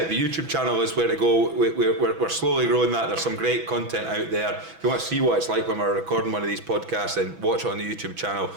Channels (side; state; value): left; late; 6.1 ms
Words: The YouTube channel is where to go. We're slowly growing that. There's some great content out there. If you want to see what it's like when we're recording one of these podcasts, then watch it on the YouTube channel.